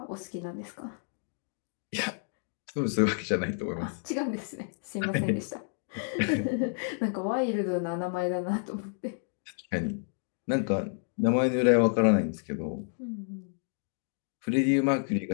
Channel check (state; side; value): silent; right; 58 dB below the other